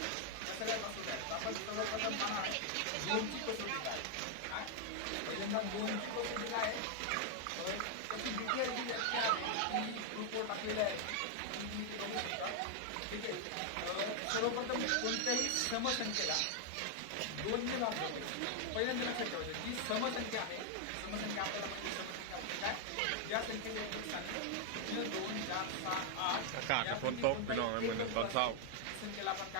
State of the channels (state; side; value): different; both; correlation 0.00